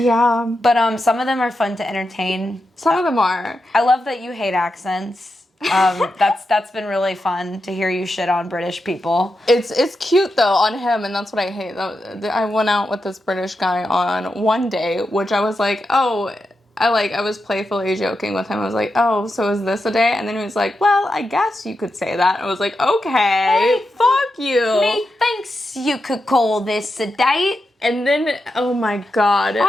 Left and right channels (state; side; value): normal; both; correlation 0.87